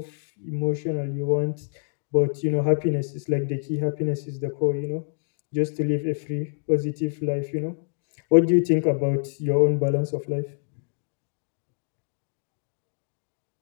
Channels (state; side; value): silent; right; digital silence